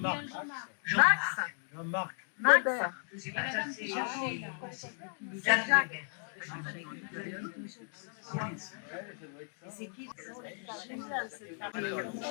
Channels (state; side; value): silent; right; 55 dB below the other